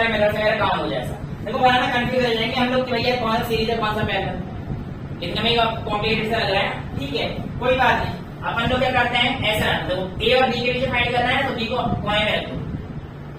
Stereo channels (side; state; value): both; identical; correlation 1.00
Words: मेथड वगैरह काम हो जाए। देखो वहां कंफ्यूज हो जाएंगे हम लोग कि भैया कौन सा सीरीज है कौन सा पैरेलल, इतने में कॉम्प्लिकेटेड सा लग रहा है। ठीक है, कोई बात नहीं, अपन लोग क्या करते हैं ऐसा, देखो A और B के बीच फाइंड करना है तो B को कोने में रखो,